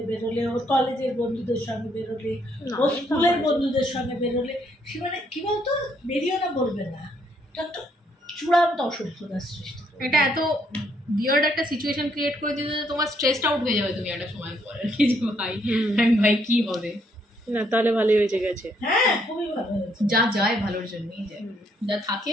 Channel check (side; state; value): both; normal; correlation 0.71